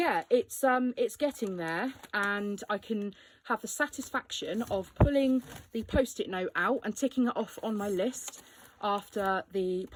it's getting there, and I can have the satisfaction of pulling the post-it note out and ticking it off on my list after the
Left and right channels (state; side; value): identical; both; correlation 1.00